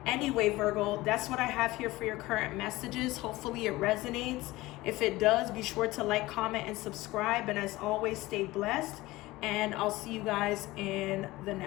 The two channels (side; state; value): right; quieter; 19.1 dB